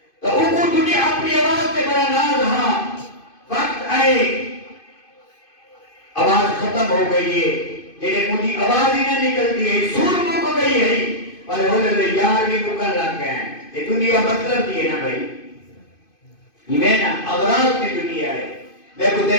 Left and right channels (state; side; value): late; right; 2.5 ms